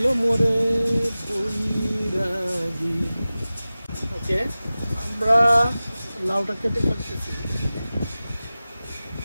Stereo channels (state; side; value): inverted; both; correlation -0.96